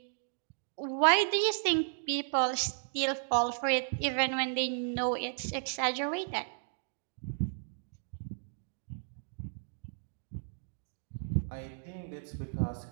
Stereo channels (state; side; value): silent; left; digital silence